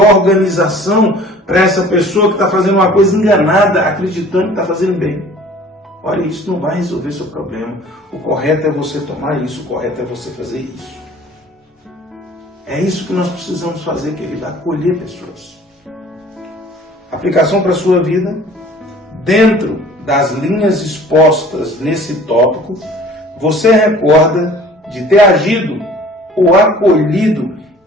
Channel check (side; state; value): both; normal; correlation 0.49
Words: para essa pessoa que está fazendo uma coisa enganada, acreditando que está fazendo bem. Olha, isso não vai resolver seu problema. O correto é você tomar isso, o correto é você fazer isso. É isso que nós precisamos fazer, querido, acolher pessoas. Aplicação para a sua vida, dentro das linhas expostas nesse tópico, você recorda de ter agido ou acolhido